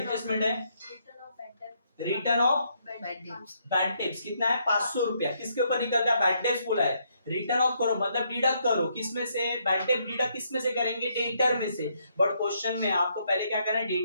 है, रिटर्न ऑफ बैड टिप्स कितना है 500 रुपया। किसके ऊपर निकलता है, बैड टिप्स बोला है, रिटर्न ऑफ करो मतलब डिडक्ट करो, किसमें से, बैड टिप डिडक्ट किसमें से करेंगे, डेटर में से। बट क्वेश्चन में आपको पहले क्या करना है,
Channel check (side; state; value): both; inverted; correlation -0.74